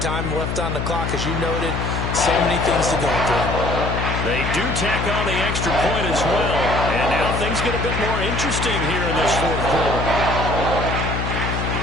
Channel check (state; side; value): noise; left; hum, 2 dB below the sound